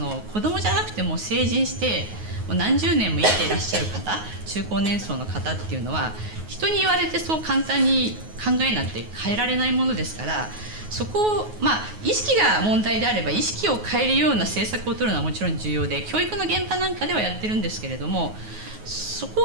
供じゃなくても成人してもう何十年も生きていらっしゃる方、中高年層の方っていうのは人に言われてそう簡単に考えなんて変えられないものですから、そこを意識が問題であれば意識を変えるような政策を取るのはもちろん重要で、教育の現場なんかではやってるんですけれども、そこ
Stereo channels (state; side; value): late; left; 9.4 ms